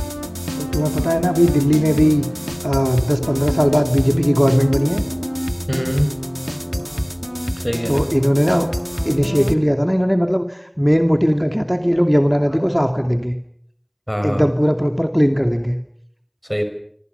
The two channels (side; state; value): both; identical; correlation 1.00